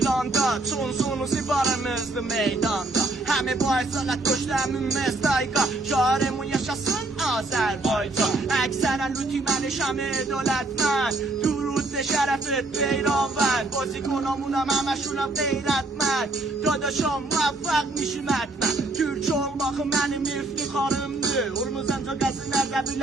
Çunsunuzu varımızdı meydanda. Həmi bu aysalət qoşdu həmin mestayqa. Şarımın yaşasın Azərbaycan. Əksərən lütüməni şəmi dövlətmən. درود شرفت پیراون بازی کنامونم همشونم غیرتمند داداشام موفق میشیم حتما Türk olmak benim iftiharımdır Urmuzanca qəzinlərdə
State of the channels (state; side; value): quieter; left; 3.0 dB